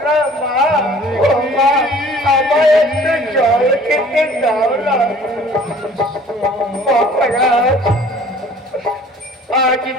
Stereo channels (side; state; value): both; normal; correlation 0.51